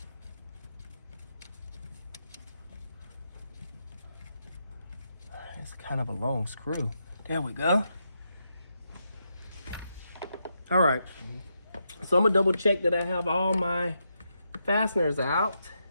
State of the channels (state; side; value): inverted; both; correlation -0.82